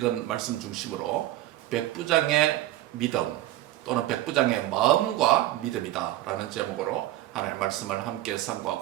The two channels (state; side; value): quieter; left; 15.4 dB